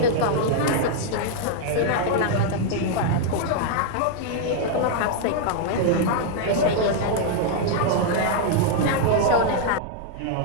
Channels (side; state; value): both; different; correlation -0.01